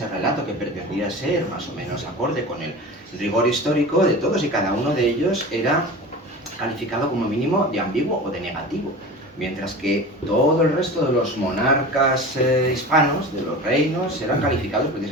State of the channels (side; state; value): both; normal; correlation 0.33